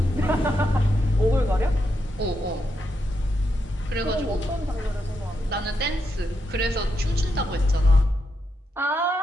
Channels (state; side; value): normal; both; correlation 0.83